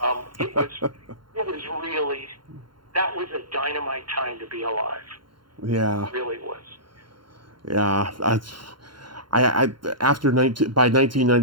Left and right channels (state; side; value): late; left; 0.72 ms